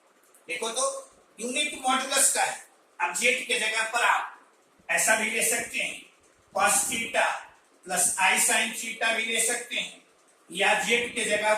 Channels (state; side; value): identical; both; correlation 1.00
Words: देखो तो यूनिट मॉडुलस का है। अब जेड के जगह पर आप ऐसा भी ले सकते हैं, cos theta plus i sin theta भी ले सकते हैं, या जेड के जगह